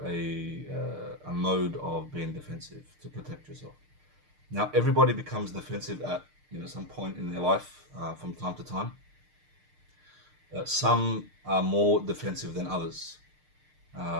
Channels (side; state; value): left; late; 6.6 ms